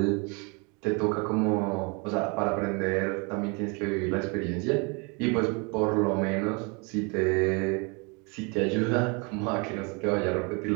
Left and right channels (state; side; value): quieter; left; 31.6 dB